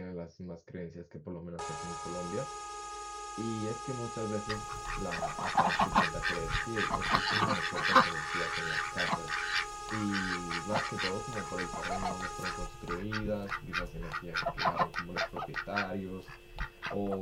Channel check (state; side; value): identical; both; correlation 1.00